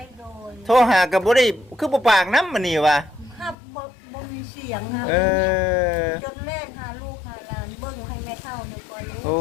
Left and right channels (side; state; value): right; drops out; at 3.6 s